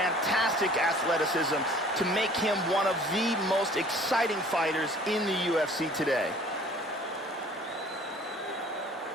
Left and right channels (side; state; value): both; normal; correlation 0.51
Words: athleticism to make him one of the most exciting fighters in the UFC today.